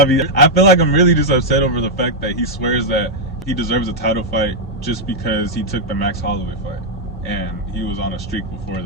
feel like I'm really just upset over the fact that he swears that he deserves a title fight just because he took the Max Holloway fight. And he was on a streak before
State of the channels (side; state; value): both; normal; correlation -0.03